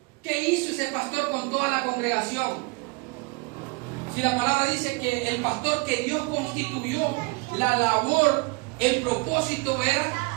¿Qué hizo ese pastor con toda la congregación? Si la palabra dice que el pastor que Dios constituyó, la labor, el propósito era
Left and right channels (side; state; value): left; quieter; 28.0 dB